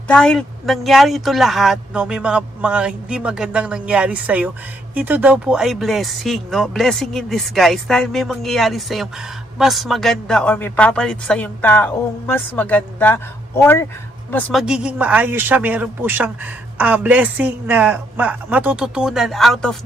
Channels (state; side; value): normal; both; correlation 0.72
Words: dahil nangyari ito lahat, no, may mga hindi magandang nangyari sa iyo, ito daw po ay blessing, no? Blessing in disguise dahil may mangyayari sa iyo mas maganda or may papalit sa yung taong mas maganda or mas magiging maayos siya. Meron po siyang blessing na matututunan out of